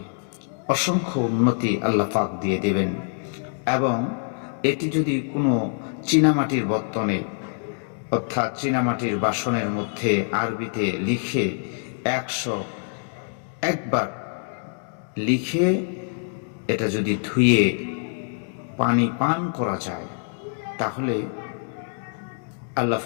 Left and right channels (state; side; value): silent; right; 62 dB below the other